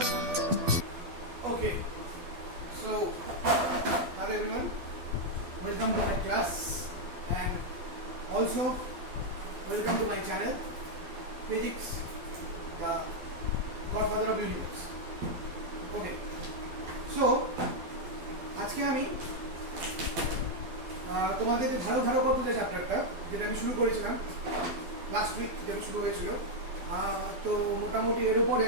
Okay, so hello everyone, welcome to my class and also welcome to my channel Physics, the Godfather of Universe. Okay, so আজকে আমি তোমাদের যে ধারকত্ব যে চ্যাপ্টারটা যেটা আমি শুরু করেছিলাম লাস্ট উইক, যেটা শুরু হয়েছিল, তো মোটামুটি এর উপরে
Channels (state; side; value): late; left; 12 ms